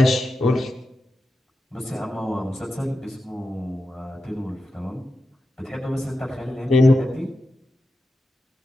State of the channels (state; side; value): normal; both; correlation 0.90